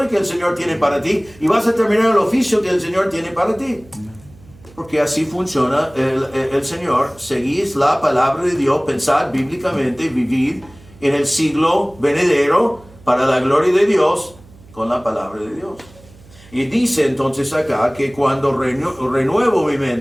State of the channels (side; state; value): right; noise; hum, 24 dB below the sound